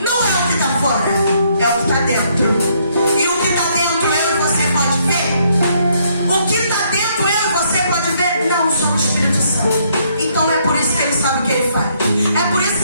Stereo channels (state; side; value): inverted; both; correlation -0.70